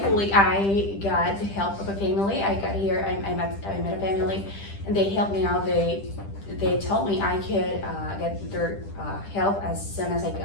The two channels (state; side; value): late; right; 10 ms